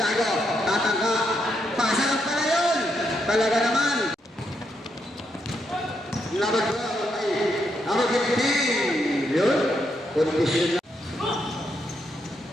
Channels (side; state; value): both; normal; correlation 0.79